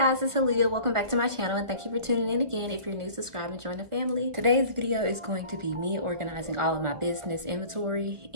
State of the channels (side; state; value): left; late; 1.4 ms